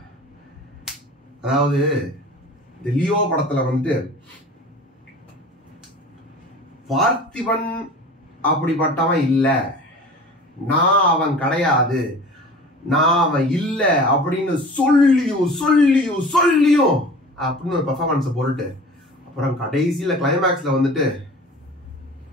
அதாவது இந்த லியோ படத்துல வந்துட்டு பார்த்திபன் அப்படிப்பட்டவன் இல்ல, நான் அவன் கிடையாது, நான் அவன் இல்ல அப்படின்னு சொல்லியும் அப்படின்னு ஒரு பெர்ஃபார்மன்ஸ் போட்டுட்டு அப்புறம் கடைசியில கிளைமேக்ஸ்ல வந்துட்டு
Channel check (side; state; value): both; normal; correlation 0.40